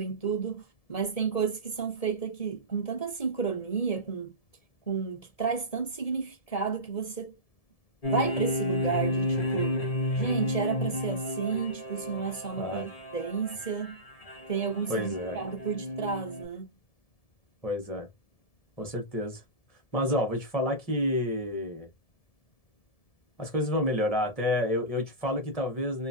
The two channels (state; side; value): late; right; 1.7 ms